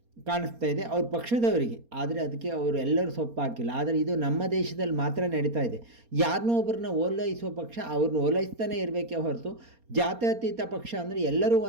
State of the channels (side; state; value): left; late; 4.3 ms